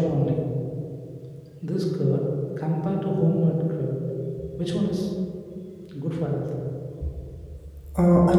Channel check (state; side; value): identical; both; correlation 1.00